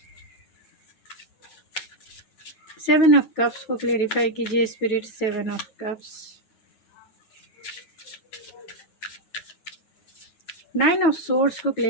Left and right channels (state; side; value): late; right; 9.1 ms